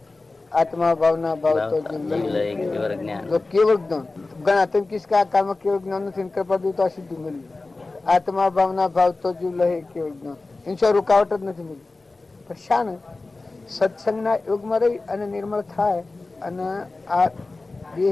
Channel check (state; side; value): quieter; right; 3.4 dB